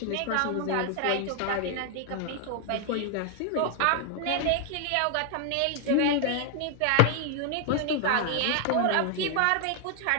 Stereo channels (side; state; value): both; different; correlation 0.00